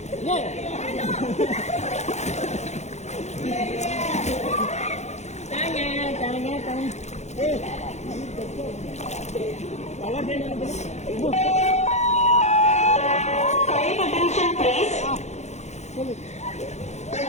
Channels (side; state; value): right; late; 0.33 ms